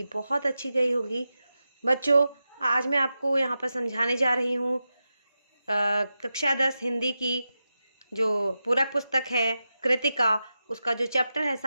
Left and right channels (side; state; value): both; inverted; correlation -0.91